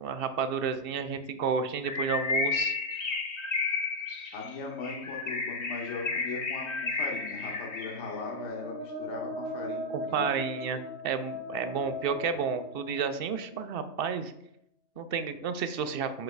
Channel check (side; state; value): right; late; 2.7 ms